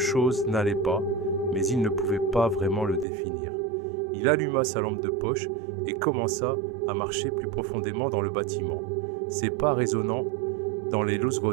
n'allait pas, mais il ne pouvait pas vraiment le définir. Il alluma sa lampe de poche et commença à marcher plus profondément dans le bâtiment, ses pas résonnant dans les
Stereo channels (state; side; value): drops out; left; at 3.1 s